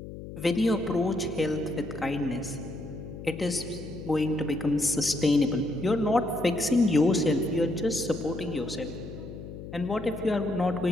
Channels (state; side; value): noise; left; hum, 11 dB below the sound